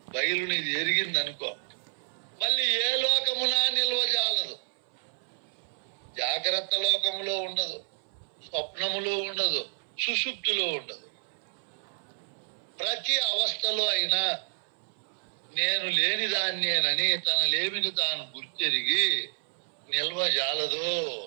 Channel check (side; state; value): left; silent; 58 dB below the other